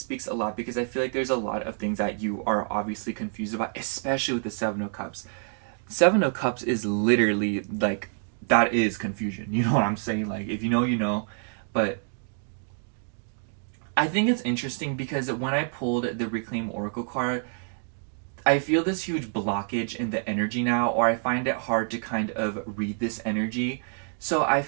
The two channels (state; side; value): silent; left; 60 dB below the other